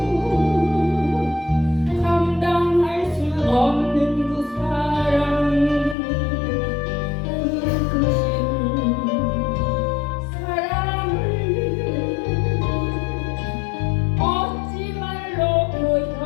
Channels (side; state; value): right; drops out; at 6.0 s